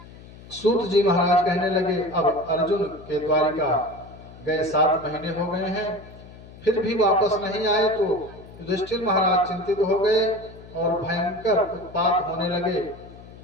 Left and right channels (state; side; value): noise; left; hum, 19 dB below the sound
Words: सूत जी महाराज कहने लगे, अब अर्जुन के द्वारिका गए 7 महीने हो गए हैं, फिर भी वापस नहीं आए। तो युधिष्ठिर महाराज चिंतित हो गए और भयंकर उत्पात होने लगे।